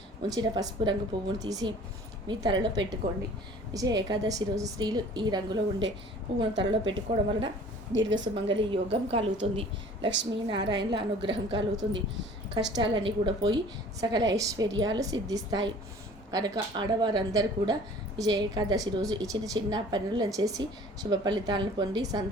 ఉంచిన పసుపు రంగు పువ్వును తీసి మీ తలలో పెట్టుకోండి. విజయ ఏకాదశి రోజు స్త్రీలు ఈ రంగులో ఉండే పువ్వును తలలో పెట్టుకోవడం వలన దీర్ఘ సుమంగళి యోగం కలుగుతుంది, లక్ష్మీనారాయణల అనుగ్రహం కలుగుతుంది, కష్టాలన్నీ కూడా పోయి సకల ఐశ్వర్యాలు సిద్ధిస్తాయి. కనుక ఆడవారందరూ కూడా విజయ ఏకాదశి రోజు ఈ చిన్న చిన్న పనులను చేసి శుభ ఫలితాలను పొంది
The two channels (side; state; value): both; normal; correlation 0.49